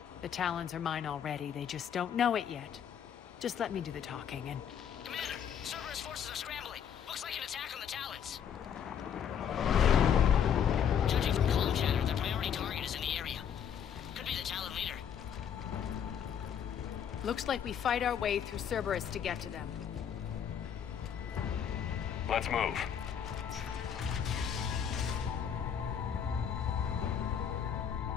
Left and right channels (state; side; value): quieter; right; 8.3 dB